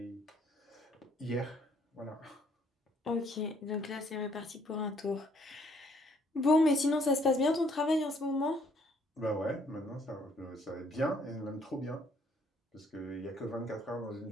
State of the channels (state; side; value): normal; both; correlation 0.65